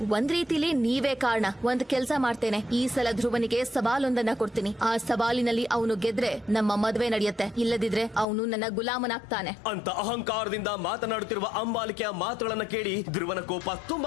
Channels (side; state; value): right; drops out; at 8.2 s